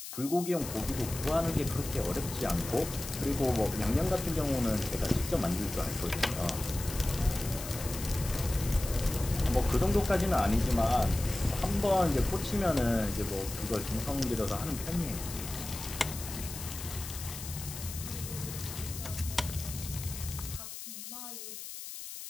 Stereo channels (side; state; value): left; noise; hiss, 9 dB below the sound